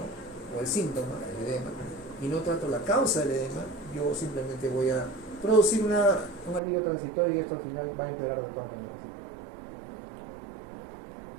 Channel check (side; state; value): left; drops out; at 6.6 s